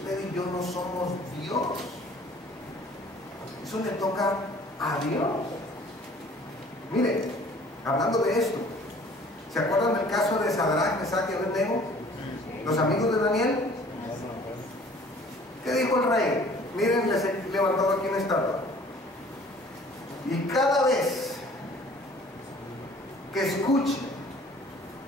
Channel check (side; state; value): both; normal; correlation 0.52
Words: y yo no somos Dios. Eso le toca a Dios. Mire, hablando de esto, ¿se acuerdan del caso de Sadrach, Mesach y Abednego? Los amigos de Daniel. ¿Qué dijo el rey? Miren, les he levantado aquí una estatua. Y cada vez que escuchen